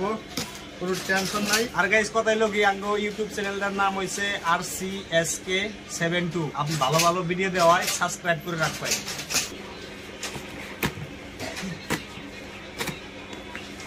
কোনো টেনশন নাই। আর গাইস কথাই লোক আঙ্গো ইউটিউব চ্যানেলটার নাম হইছে RCSK72। আপনি ভালো ভালো ভিডিও দেওয়ায় সাবস্ক্রাইব করে রাখবেন।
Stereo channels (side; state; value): both; identical; correlation 1.00